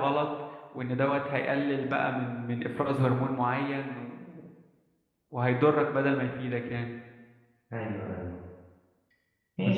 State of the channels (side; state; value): both; identical; correlation 1.00